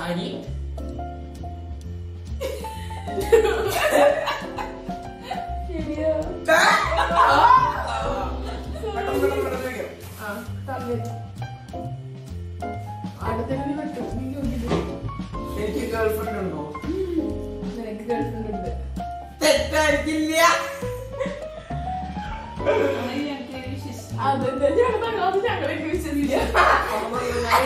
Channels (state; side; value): identical; both; correlation 1.00